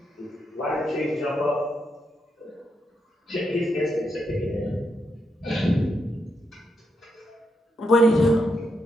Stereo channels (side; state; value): both; normal; correlation 0.82